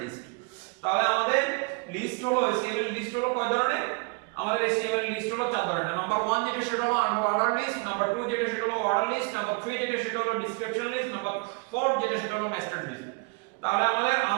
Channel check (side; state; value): left; quieter; 31.5 dB